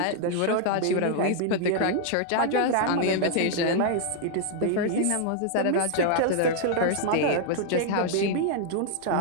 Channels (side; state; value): both; different; correlation 0.00